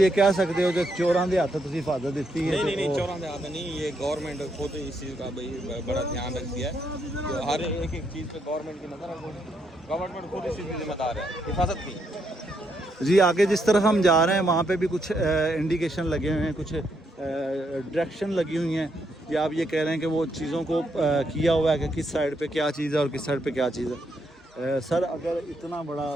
कह सकते हो कि चोरां दे हथ तुम हिफाजत दी है। नहीं चोरां दे हाथ नहीं, ये गवर्नमेंट खुद इस चीज़ का भाई बड़ा ध्यान रखती है। तो हर एक चीज़ पे गवर्नमेंट की नज़र है, गवर्नमेंट खुद इस चीज़ की जिम्मेदार है, हिफाजत की। जी आगे जिस तरफ हम जा रहे हैं वहाँ पे भी कुछ इंडिकेशन लगे हुए हैं, कुछ डायरेक्शन लगी हुई हैं, या आप ये कह रहे हैं कि वो चीज़ों को किया हुआ है कि किस साइड पे क्या चीज़ है और किस साइड पे क्या चीज़ है। सर अगर इतना बड़ा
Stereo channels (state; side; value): normal; both; correlation 0.77